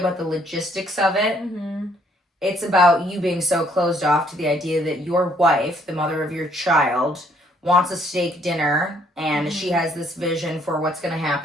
the logistics of it. It's about you being so closed off to the idea that your wife, the mother of your child, wants a steak dinner, and she has this vision for what's going to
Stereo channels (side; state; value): both; normal; correlation 0.66